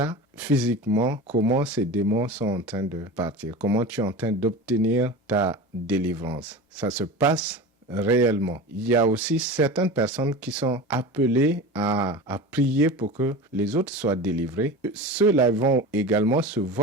physiquement comment ces démons sont en train de partir, comment tu es en train d'obtenir ta délivrance. Ça se passe réellement. Il y a aussi certaines personnes qui sont appelées à prier pour que les autres soient délivrés. Ceux-là vont également se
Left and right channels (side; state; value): both; normal; correlation 0.31